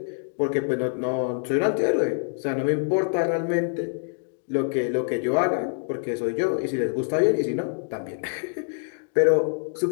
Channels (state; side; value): silent; right; digital silence